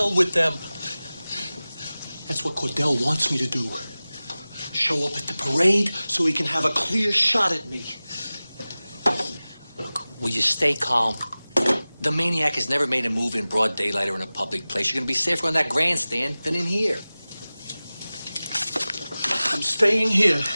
with them. That's what Cordell wants me to do. Show up at the parade so he can have a clear shot at me. Look, will you stay calm? The Maniac has never made a move in broad daylight or in a public place. You're gonna be safer on that grandstand than in here. I'm staying here.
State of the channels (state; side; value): inverted; both; correlation -0.98